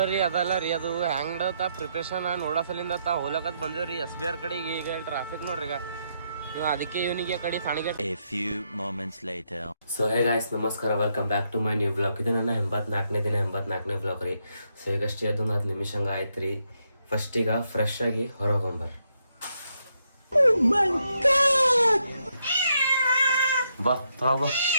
ಅದಲ್ಲ ರೀ, ಅದು ಹ್ಯಾಂಗ್ಡತ್ತ ಪ್ರಿಪ್ರೇಷನ್ ನೋಡಸಲಿಂದ ಹೋಲಕತ್ ಬಂದೇವ್ರಿ SBR ಕಡೆಗೆ. ಈಗ ಟ್ರಾಫಿಕ್ ನೋಡ್ರಿ, ಈಗ ಅದಕ್ಕೆ ಇವನಿಗೆ ಕಡೆ ಸಾಣಿಗೆ. ಸೊ ಹೇ ಗಾಯ್ಸ್, ನಮಸ್ಕಾರ, welcome back to my new blog. ಇದು ನನ್ನ 84ನೇ ಬ್ಲಾಗ್ ರೀ. ಸೊ ಈಗಷ್ಟೇ ಅದೊಂದು 10 ನಿಮಿಷ ಹಂಗೆ ಆಯ್ತು ರೀ. ಫಸ್ಟ್ ಈಗ ಫ್ರೆಶ್ ಆಗಿ ಹೊರಗೊಂಬರ್ ಬಾ ತೊಳ ಬಾ.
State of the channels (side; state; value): both; inverted; correlation -0.78